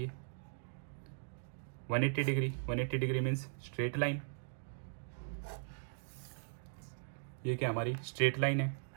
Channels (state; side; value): silent; left; digital silence